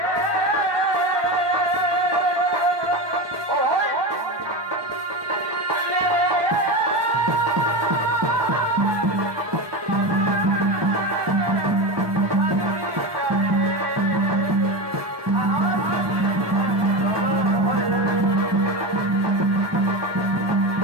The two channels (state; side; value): late; left; 1.2 ms